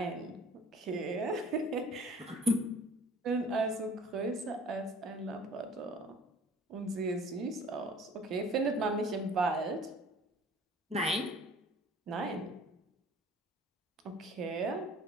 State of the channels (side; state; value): both; normal; correlation 0.49